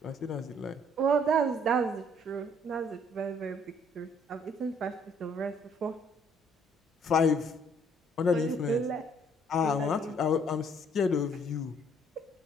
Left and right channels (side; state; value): both; normal; correlation 0.63